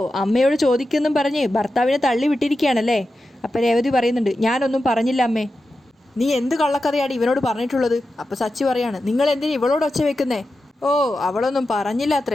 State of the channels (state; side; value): normal; both; correlation 0.91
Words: അമ്മയോട് ചോദിക്കുന്നും പറഞ്ഞ് ഭർത്താവിനെ തള്ളി വിട്ടിരിക്കുകയാണല്ലേ? അപ്പം രേവതി പറയുന്നുണ്ട്, ഞാനൊന്നും പറഞ്ഞില്ല അമ്മേ. നീ എന്ത് കള്ളക്കഥയാണ് ഇവനോട് പറഞ്ഞിട്ടുള്ളത്? അപ്പം സച്ചി പറയാണ്, നിങ്ങൾ എന്തിനാ ഇവളോട് ഒച്ച വെക്കുന്നേ? ഓ, അവളൊന്നും പറഞ്ഞില്ല